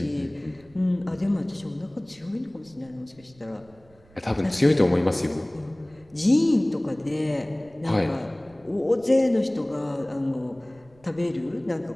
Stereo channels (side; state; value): right; noise; rumble, 28 dB below the sound